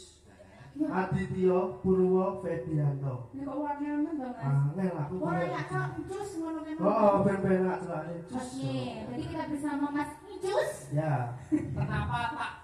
Adityo Purwo Fedianto. Ini kok warnanya to Mas? Angel aku. Ora ya kok Ucus ngono kan. Oh, ben-ben nak celane Ucus. Oke, berarti kita bersama Mas Ucus. Ya. Kenapa tak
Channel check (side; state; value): both; identical; correlation 1.00